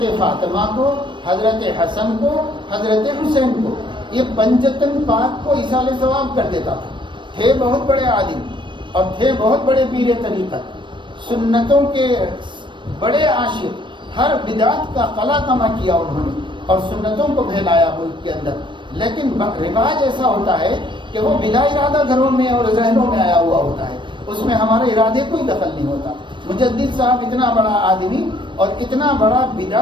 فاطمہ کو، حضرت حسن کو، حضرت حسین کو، یہ پنجتن پاک کو ایصال ثواب کر دیتا تھا۔ تھے بہت بڑے عالم اور تھے بہت بڑے پیر طریقت، سنتوں کے بڑے عاشق، ہر بدعت کا قلع کما کیا انہوں نے اور سنتوں کو پھیلایا ملک کے اندر۔ لیکن رواج ایسا ہوتا ہے کہ وہ بلا ارادہ گھروں میں اور ذہنوں میں آیا ہوا ہوتا ہے، اس میں ہمارے ارادے کوئی دخل نہیں ہوتا۔ مجدد صاحب اتنا بڑا آدمی اور اتنا بڑا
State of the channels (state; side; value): late; left; 0.23 ms